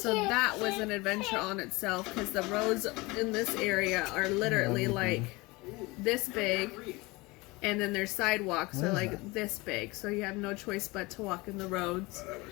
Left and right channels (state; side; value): quieter; right; 23.5 dB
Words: that was an adventure on itself because the roads in this area are literally like this big, and then their sidewalks are like this big, so you have no choice but to walk in the roads.